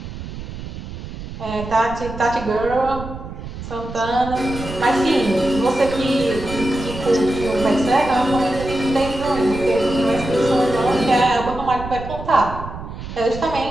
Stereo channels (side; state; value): right; noise; rumble, 10 dB below the sound